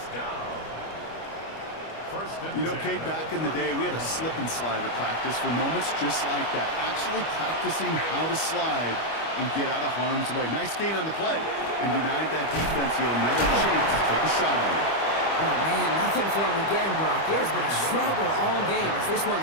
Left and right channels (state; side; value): late; right; 25 ms